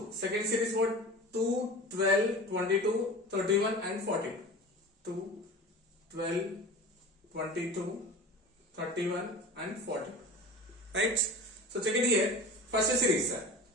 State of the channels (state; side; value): normal; both; correlation 0.36